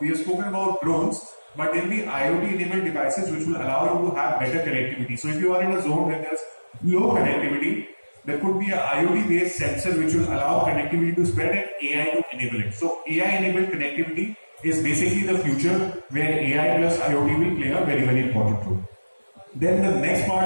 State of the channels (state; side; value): inverted; both; correlation -1.00